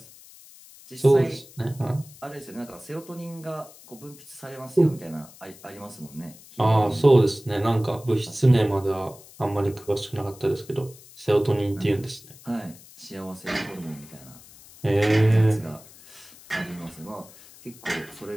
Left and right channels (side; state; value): left; noise; hiss, 21 dB below the sound